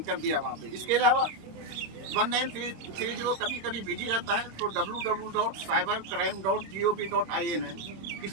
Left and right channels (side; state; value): left; late; 26 ms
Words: कर दिया वहाँ पे। इसके अलावा 1930 कभी कभी बिजी रहता है तो www.cybercrime.gov.in है, इस